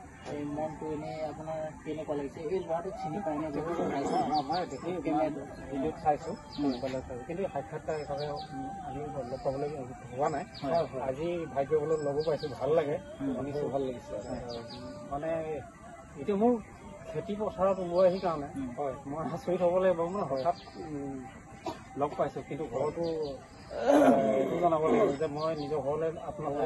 এই মনটো এনে আপোনাৰ কেনেকুৱা লাগিছে এই ল'ৰাটোক চিনি পাই নে ভিডিঅ'ত চাইছো কিন্তু সাক্ষাৎকাৰ হিচাপে আমি লগ পাবলৈ হোৱা নাই আজি ভাগ্যবলত লগো পাইছো ভাল লাগে শুনিছো ভাল লাগিছে মানে এতিয়া মোৰ খেতি পথাৰত ওলাই আহি কাৰণে হয় মই আচৰিত হ'ব লাগিব মানে হঠাৎ লগ পাইছো কিন্তু ঘৰতো এইটো জনাব লাগিব যে মই নিজৰ ঘৰলৈ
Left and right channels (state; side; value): identical; both; correlation 1.00